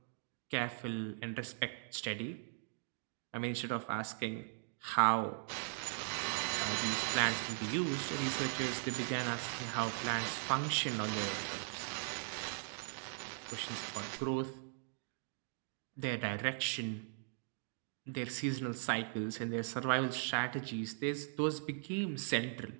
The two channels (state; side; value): silent; left; digital silence